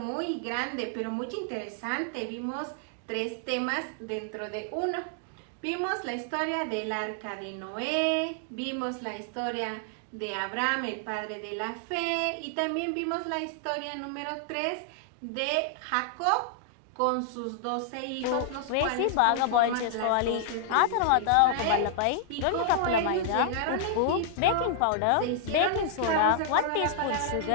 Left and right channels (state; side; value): different; both; correlation 0.00